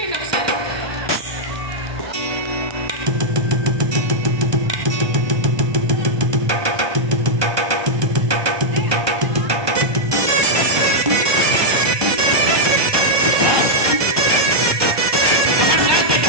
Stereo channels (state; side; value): late; left; 1.2 ms